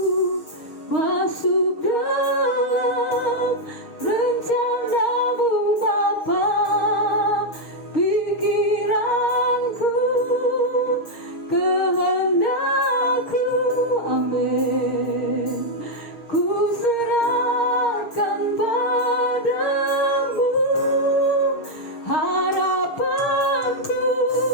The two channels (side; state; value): right; late; 6.5 ms